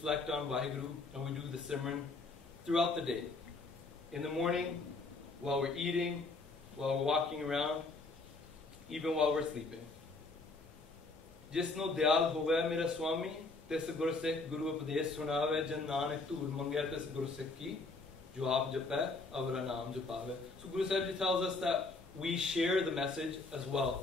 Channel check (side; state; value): right; quieter; 3.6 dB